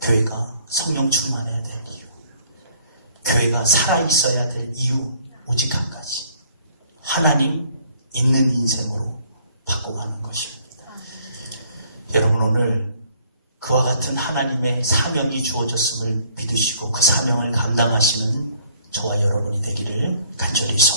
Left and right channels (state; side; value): inverted; both; correlation -0.61